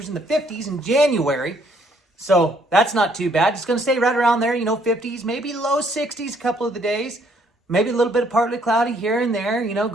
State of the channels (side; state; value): both; normal; correlation 0.66